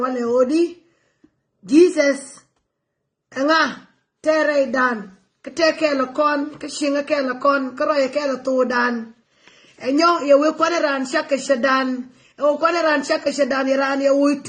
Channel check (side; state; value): both; identical; correlation 1.00